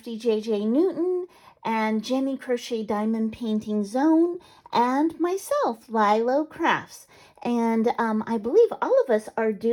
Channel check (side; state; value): both; identical; correlation 1.00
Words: JJ Newton, and Jenny Crochet Diamond Painting Zone, and myself, LYLO Crafts. And I believe all of us are